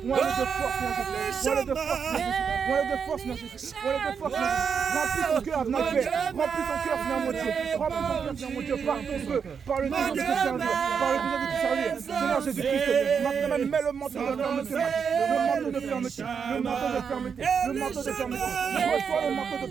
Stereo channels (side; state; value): left; quieter; 6.5 dB